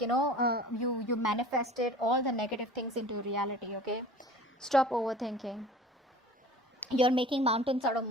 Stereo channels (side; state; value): both; normal; correlation 0.44